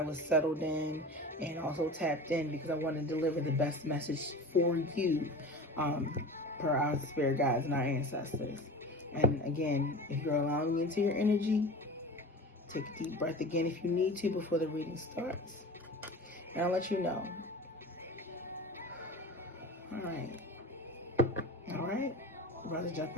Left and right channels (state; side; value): normal; both; correlation 0.34